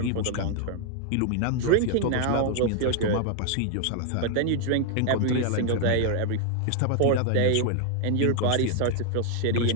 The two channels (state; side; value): different; both; correlation 0.00